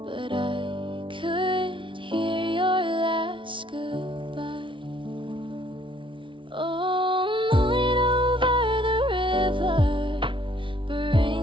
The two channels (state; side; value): late; left; 0.25 ms